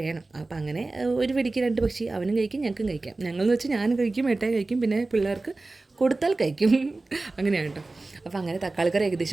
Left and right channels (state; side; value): quieter; left; 3.3 dB